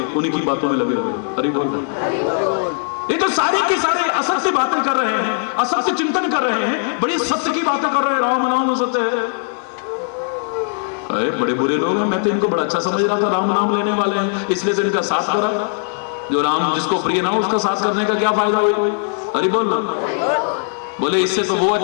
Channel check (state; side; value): silent; right; digital silence